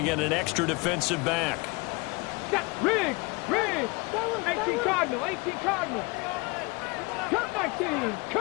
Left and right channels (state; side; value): quieter; right; 26.8 dB